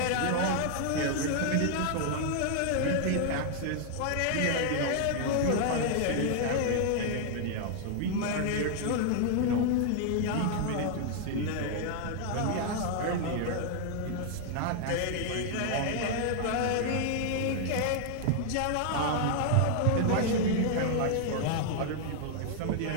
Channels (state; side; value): different; both; correlation 0.00